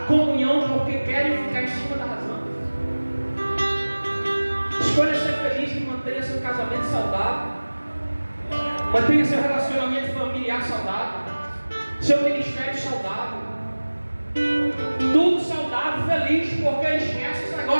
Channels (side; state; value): both; inverted; correlation -1.00